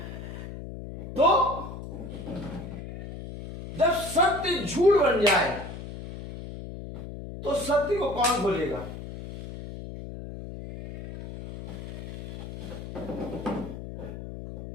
तो जब सत्य झूठ बन जाए तो सत्य को कौन खोलेगा?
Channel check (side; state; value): left; noise; hum, 10 dB below the sound